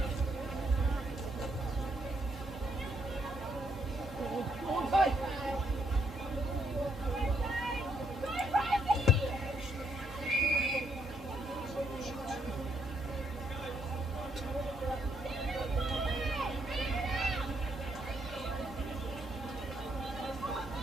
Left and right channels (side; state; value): both; normal; correlation 0.73